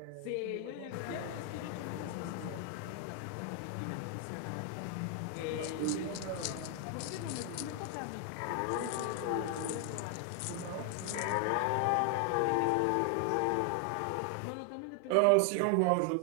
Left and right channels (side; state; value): both; different; correlation 0.00